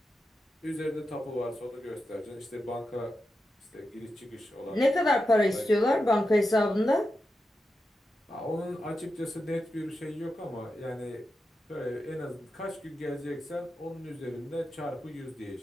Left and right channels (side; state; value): both; normal; correlation 0.89